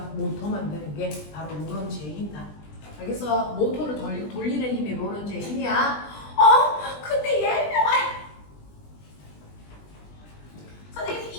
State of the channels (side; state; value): right; late; 20 ms